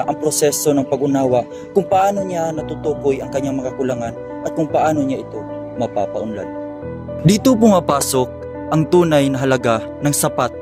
ang proseso ng pag-unawa kung paano niya natutukoy ang kanyang mga kakulangan at kung paano niya ito mapapaunlad. Dito pumapasok ang tunay na halaga ng sapat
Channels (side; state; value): both; identical; correlation 1.00